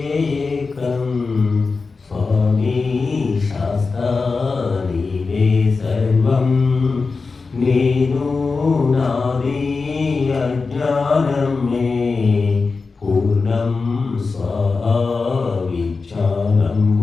ఏకం, స్వామి శాస్తా నీవే సర్వం. నేను నాది అజ్ఞానం మే పూర్ణం స్వాహా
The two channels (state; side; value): quieter; right; 4.3 dB